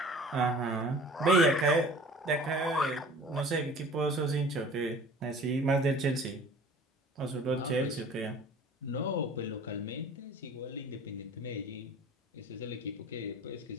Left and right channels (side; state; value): both; normal; correlation 0.46